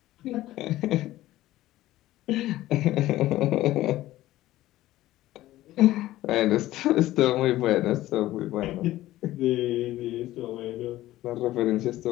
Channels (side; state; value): right; quieter; 15.5 dB